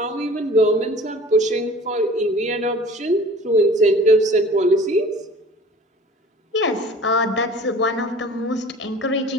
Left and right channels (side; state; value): both; normal; correlation 0.45